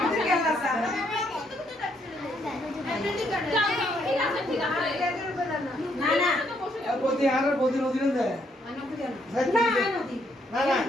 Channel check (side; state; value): both; normal; correlation 0.72